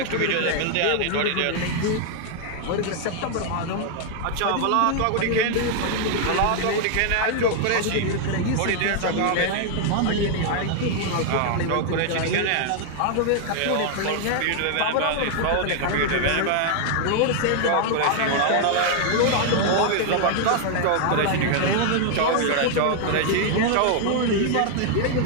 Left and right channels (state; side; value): different; both; correlation 0.00